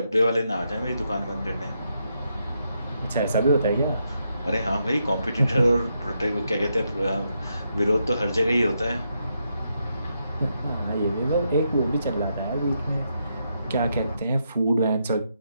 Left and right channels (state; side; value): inverted; both; correlation -0.81